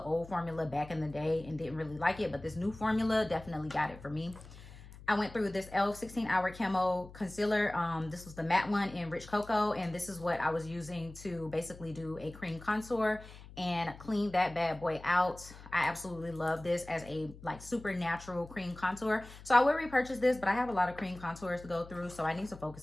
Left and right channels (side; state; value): left; noise; hum, 17 dB below the sound